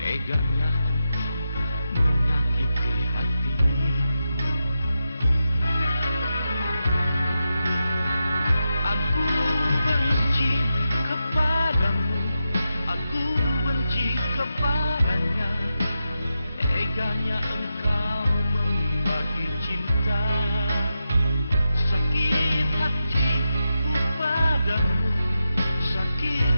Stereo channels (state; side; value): inverted; both; correlation -0.87